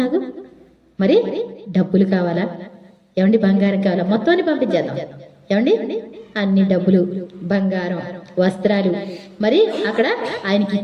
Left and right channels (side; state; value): both; identical; correlation 1.00